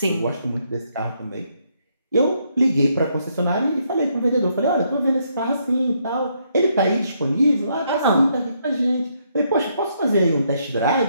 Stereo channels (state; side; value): inverted; both; correlation -0.74